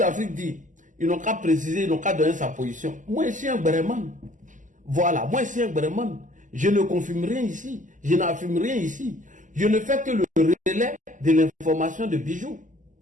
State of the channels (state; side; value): late; left; 0.37 ms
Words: dit, ils n'ont qu'à préciser, ils n'ont qu'à donner sa position. Moi, je suis un Breman. Voilà, moi, je suis un Breman. Je ne confirme rien ici. Je n'affirme rien ici. Je ne fais que le relais de l'information de Bijou.